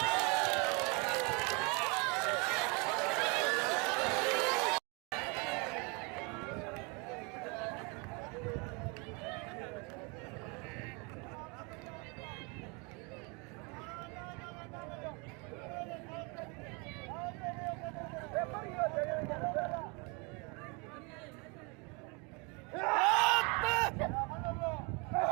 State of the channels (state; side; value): quieter; left; 30.9 dB